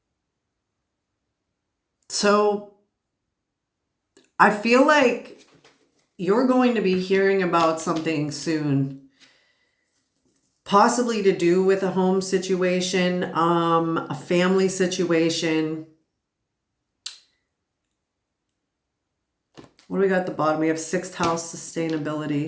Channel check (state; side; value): identical; both; correlation 1.00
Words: So I feel like you're going to be hearing about something soon, possibly to do with a home situation, a family situation. What do we got at the bottom? We have 6th house,